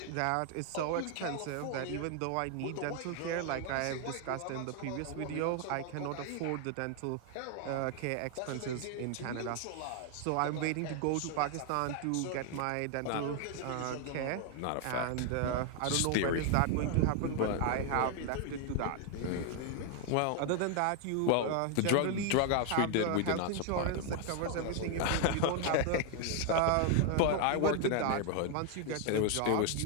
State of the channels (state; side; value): different; both; correlation 0.00